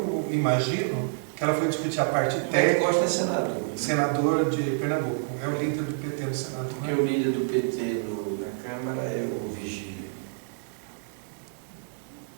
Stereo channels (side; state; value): left; silent; digital silence